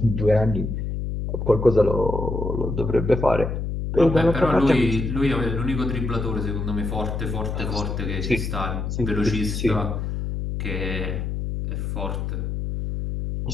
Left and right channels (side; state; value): left; noise; hum, 3 dB below the sound